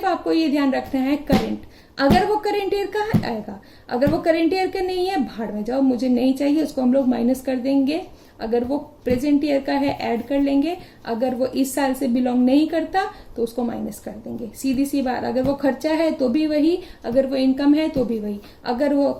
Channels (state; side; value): identical; both; correlation 1.00